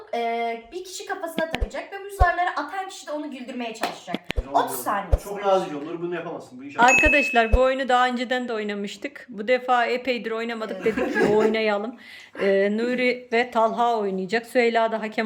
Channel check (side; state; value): both; identical; correlation 1.00